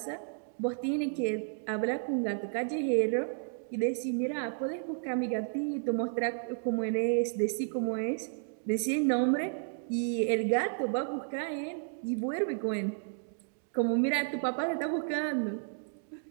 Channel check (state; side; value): silent; left; digital silence